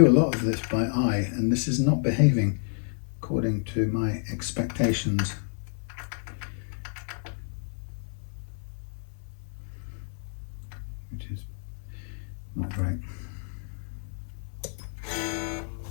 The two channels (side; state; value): right; silent; digital silence